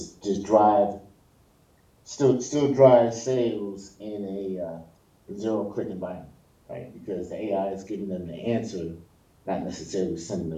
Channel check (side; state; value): both; identical; correlation 1.00